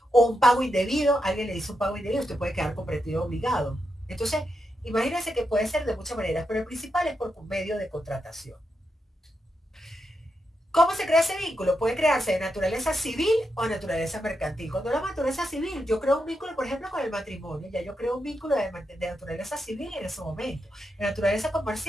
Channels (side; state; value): both; normal; correlation 0.85